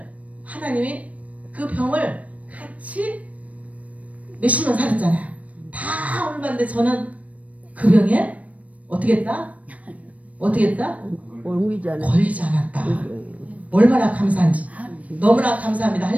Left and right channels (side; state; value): left; late; 0.068 ms